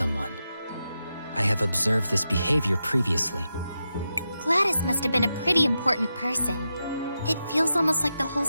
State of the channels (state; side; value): inverted; both; correlation -0.88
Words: I have observed this behavior previously. Gladys must have been a pretty important person. It feels almost like the whole